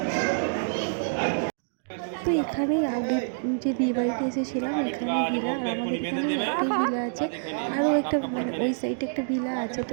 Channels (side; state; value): left; silent; digital silence